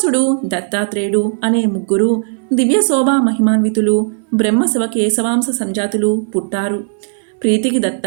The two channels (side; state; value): left; silent; digital silence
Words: దత్తాత్రేయుడు అనే ముగ్గురు దివ్య శోభా మహిమాన్వితులు, బ్రహ్మ శివ కేశవాంశ సంజాతులు పుట్టారు. ప్రీతికి